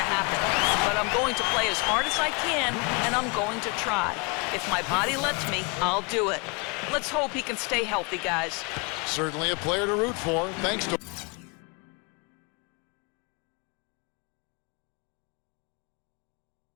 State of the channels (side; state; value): right; quieter; 31.4 dB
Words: happen. But I'm going to play as hard as I can, and I'm going to try. If my body lets me, I'll do it. Let's hope he can stay healthy, guys. Certainly a player to root for. Thanks to